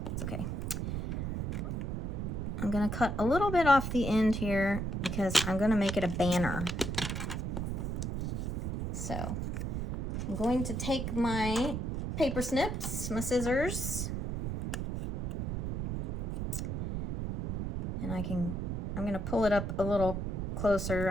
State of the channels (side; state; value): right; noise; rumble, 2 dB below the sound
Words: It's okay. I'm going to cut a little bit off the end here because I'm going to make it a banner. So I'm going to take my paper snips, my scissors, and I'm going to pull it up a little closer.